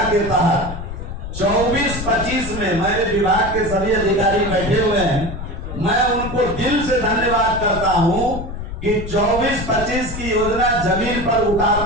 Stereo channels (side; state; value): left; noise; rumble, 8 dB below the sound